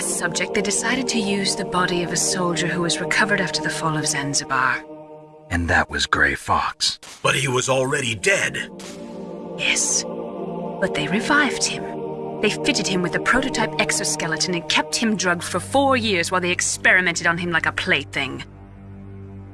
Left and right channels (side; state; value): both; identical; correlation 1.00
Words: subject, they decided to use the body of a soldier who was recovered after the fall of Zanzibar. And that was Gray Fox. But he was already dead. Yes. But they revived him. They fitted him with a prototype exoskeleton and kept him drugged for 4 years while they experimented on him like a plaything.